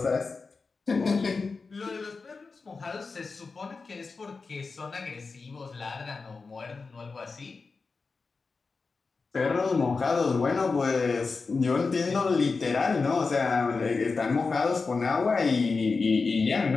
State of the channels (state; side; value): quieter; right; 4.4 dB